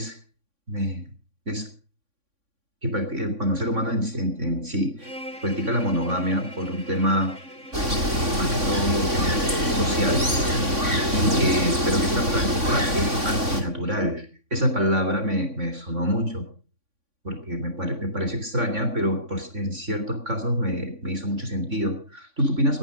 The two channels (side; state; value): left; late; 3.6 ms